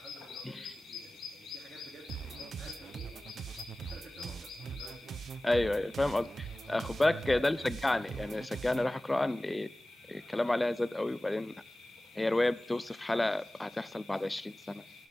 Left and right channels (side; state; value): both; normal; correlation 0.97